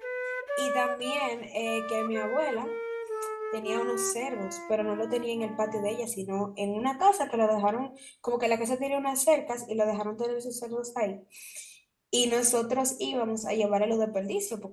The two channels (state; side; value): identical; both; correlation 1.00